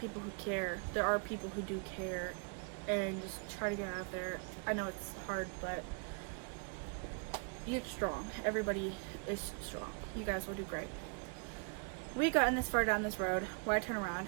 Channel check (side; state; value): left; quieter; 37.2 dB